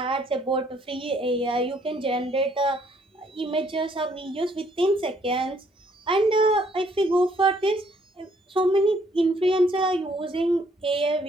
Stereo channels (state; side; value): normal; both; correlation 0.66